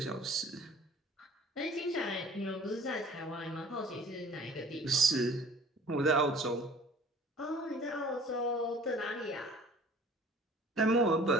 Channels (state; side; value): normal; both; correlation 0.49